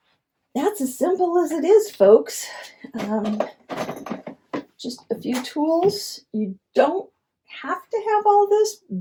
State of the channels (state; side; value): identical; both; correlation 1.00